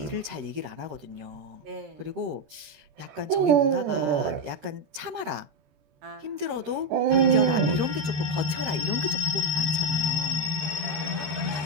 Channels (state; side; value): late; left; 13 ms